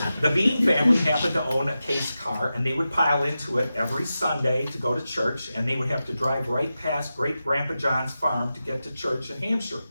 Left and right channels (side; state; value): both; inverted; correlation -0.92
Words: The Bean family happened to own a Case car, and they would pile into it every Sunday to go to church, and they would have to drive right past Great-Grandpa John's farm to get to church in Hampshire.